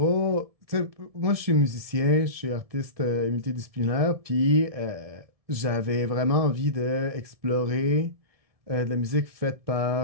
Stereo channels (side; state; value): left; late; 1.7 ms